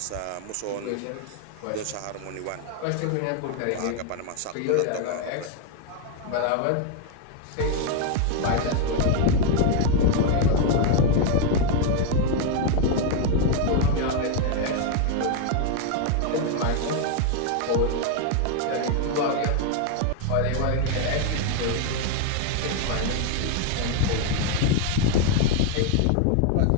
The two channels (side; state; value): both; different; correlation 0.01